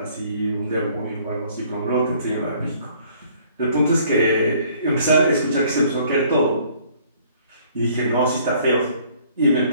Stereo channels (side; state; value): both; inverted; correlation -0.59